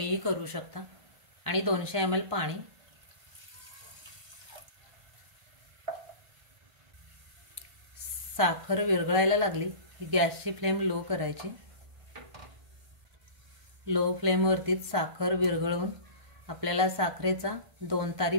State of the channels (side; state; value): left; late; 1.5 ms